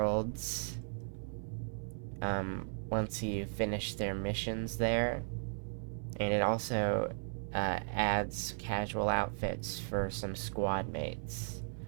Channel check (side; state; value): left; silent; 54 dB below the other